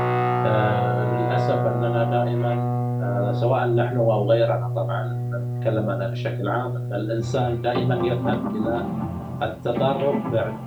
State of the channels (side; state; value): both; identical; correlation 1.00